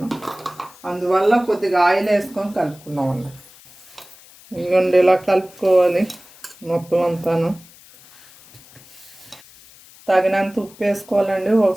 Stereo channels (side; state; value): left; noise; hiss, 23 dB below the sound